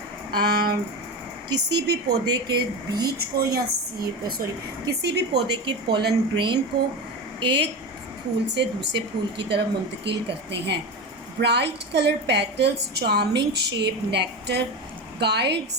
किसी भी पौधे के बीज को या किसी भी पौधे के पोलन ग्रेन को एक फूल से दूसरे फूल की तरफ मुंतकिल करते हैं. Bright colour petals, charming shape, nectar,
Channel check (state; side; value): normal; both; correlation 0.22